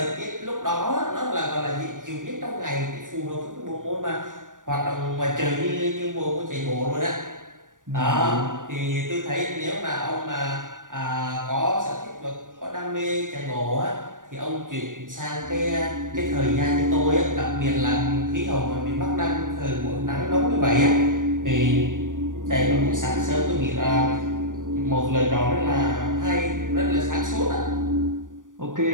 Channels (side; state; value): left; late; 0.88 ms